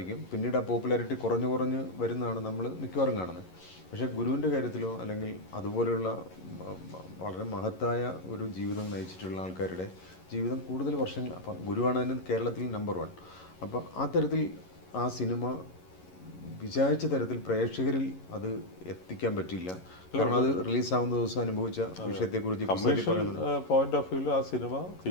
പിന്നീട് ആ പോപ്പുലാരിറ്റി കുറഞ്ഞ് വരുന്നതാണ് നമ്മൾ മിക്കവാറും കാണുന്നത്. പക്ഷേ ഗുരുവിൻ്റെ കാര്യത്തിലോ അല്ലെങ്കിൽ അതുപോലെയുള്ള വളരെ മഹത്തായ ഒരു ജീവിതം നയിച്ചിട്ടുള്ള ആൾക്കാരുടെ ജീവിതം കൂടുതൽ വർഷങ്ങൾ, അപ്പം ഗുരുവാണ് അതിന് കേരളത്തിൽ നമ്പർ 1. അപ്പോൾ ആ തരത്തിൽ ആ സിനിമ വിചാരിച്ച തരത്തിൽ പ്രേക്ഷകരിൽ അത് എത്തിക്കാൻ പറ്റില്ല. കാരണം അത് റിലീസാവുന്ന ദിവസം അനുഭവിച്ച വിഷയത്തെക്കുറിച്ച് പോയിന്റ് ഓഫ് വ്യൂവിൽ ആ സിനിമ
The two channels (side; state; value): right; late; 11 ms